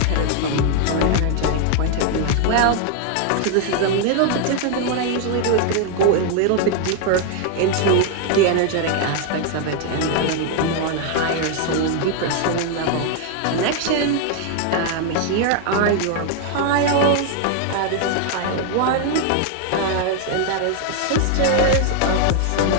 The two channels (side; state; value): both; different; correlation 0.00